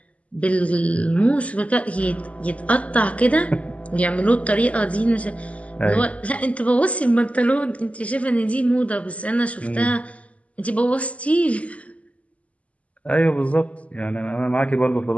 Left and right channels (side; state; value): right; late; 0.066 ms